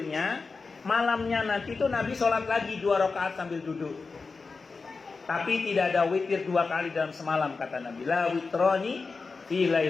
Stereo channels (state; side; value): quieter; right; 4.3 dB